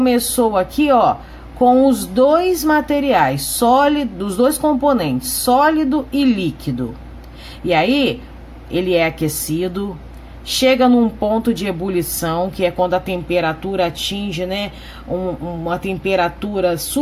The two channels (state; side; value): identical; both; correlation 1.00